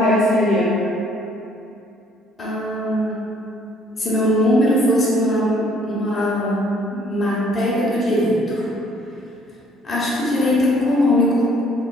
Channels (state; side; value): normal; both; correlation 0.62